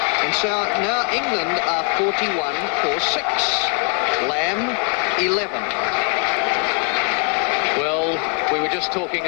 And so now England are 41 for 6. Lamb 11. Well, we were just talking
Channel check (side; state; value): right; quieter; 35.3 dB